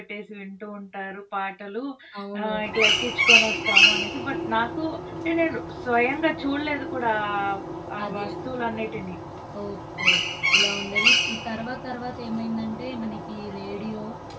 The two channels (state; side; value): identical; both; correlation 1.00